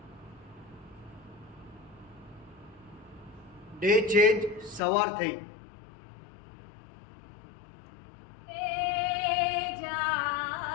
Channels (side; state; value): right; drops out; at 4.8 s